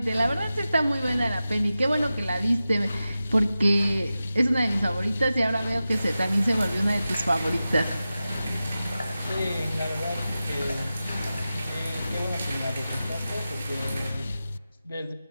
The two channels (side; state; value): both; inverted; correlation -0.94